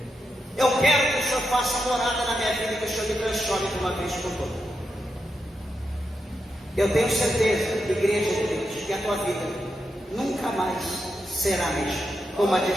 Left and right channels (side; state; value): both; normal; correlation 0.85